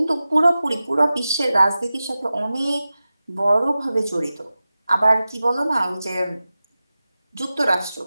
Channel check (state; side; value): inverted; both; correlation -0.95